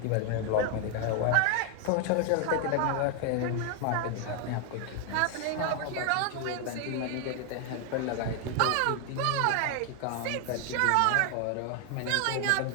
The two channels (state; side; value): different; both; correlation 0.01